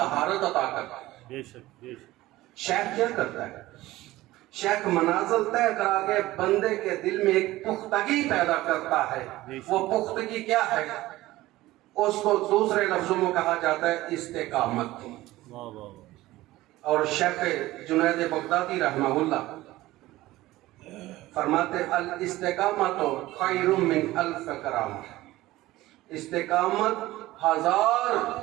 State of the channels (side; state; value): left; quieter; 17.3 dB